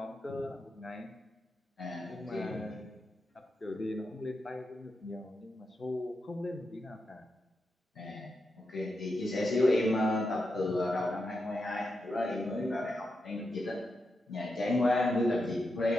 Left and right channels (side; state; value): both; normal; correlation 0.86